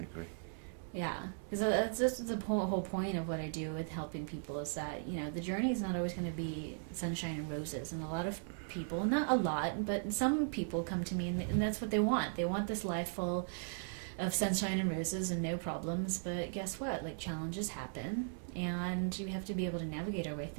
yeah, because that's just the whole point of what I do with helping people, is that, you know, the journey is not always going to be sunshine and roses. And a lot of people, not a lot, but some people come to me and that's what they want. They want this life full of sunshine and roses and no problems. But guess what? Like, challenges happen, and we have to be able to navigate our way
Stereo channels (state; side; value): silent; left; digital silence